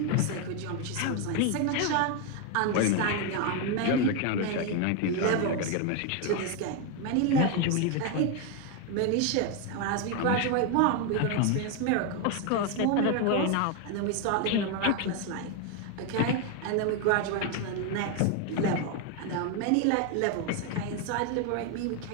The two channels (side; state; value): both; different; correlation 0.01